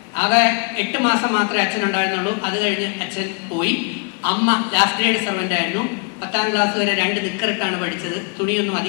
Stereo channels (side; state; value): right; quieter; 36.7 dB